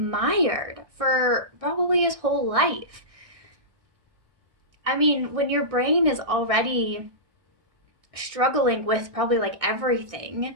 for probably his whole life. I mean, when your brain is already struggling with probably like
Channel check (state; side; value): late; left; 1.6 ms